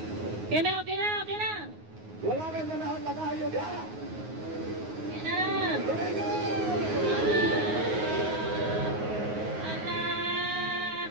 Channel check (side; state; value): left; late; 9.5 ms